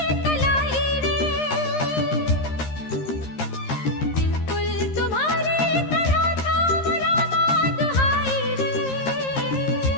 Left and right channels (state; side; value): late; right; 13 ms